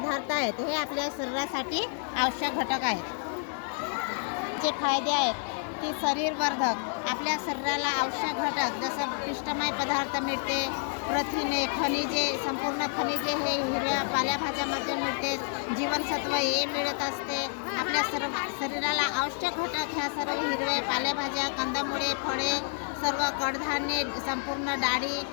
आहेत. हे आपल्या शरीरासाठी आवश्यक घटक आहेत. जे फायदे आहेत की शरीरवर्धक आपल्या शरीराला आवश्यक घटक जसं पिष्टमय पदार्थ मिळते, प्रथिने, खनिजे, संपूर्ण खनिजे हे हिरव्या पालेभाज्यामध्ये मिळते. जीवनसत्व हे मिळत असते. आपल्या शरीराला आवश्यक घटक ह्या सर्व हिरव्या पालेभाज्या, कंदमुळे, फळे, सर्व कडधान्ये, संपूर्ण डाळी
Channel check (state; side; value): silent; right; 57 dB below the other